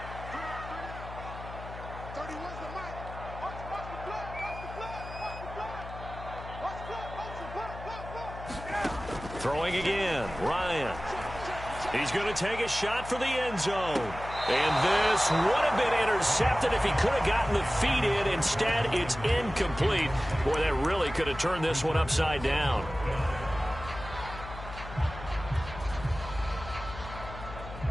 Throwing again, Ryan. He's going to take a shot for the end zone. And this would have been intercepted if he could have gotten the feet in. Instead, it's incomplete. Boy, that really could have turned this one upside down.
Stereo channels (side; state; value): left; noise; hum, 12 dB below the sound